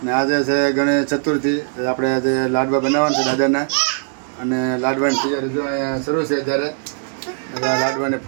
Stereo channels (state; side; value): silent; left; 60 dB below the other